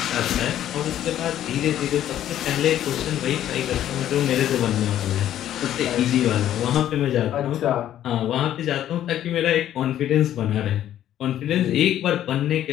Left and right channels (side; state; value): right; quieter; 11.7 dB